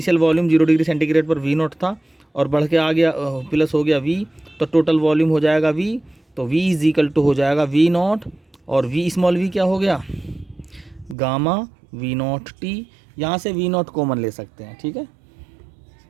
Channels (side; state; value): left; drops out; at 11.2 s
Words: volume 0 degree centigrade पर V0 था और बढ़ के आ गया प्लस हो गया V, तो टोटल वॉल्यूम हो जाएगा V तो V इज इक्वल टू हो जाएगा V नॉट, और V स्मॉल v क्या हो गया, गामा V नॉट टी। यहाँ से V नॉट कॉमन ले सकते हैं, ठीक है,